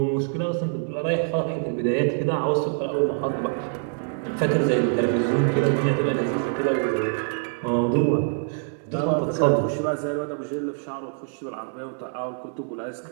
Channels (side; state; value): left; silent; 62 dB below the other